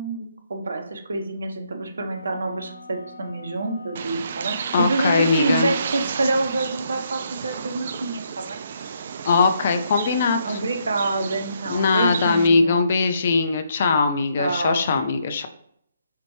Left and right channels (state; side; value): inverted; both; correlation -0.74